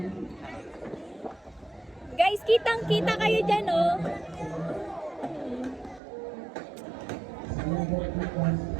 Guys, kitang-kita kayo dyan, oh.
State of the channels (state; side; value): drops out; left; at 6.0 s